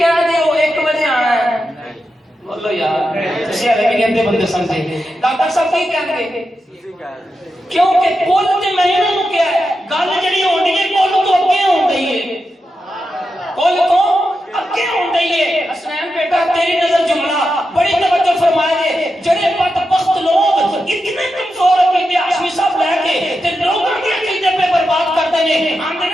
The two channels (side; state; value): both; normal; correlation 0.88